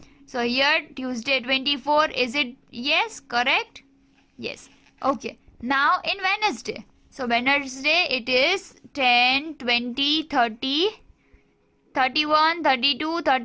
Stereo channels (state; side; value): identical; both; correlation 1.00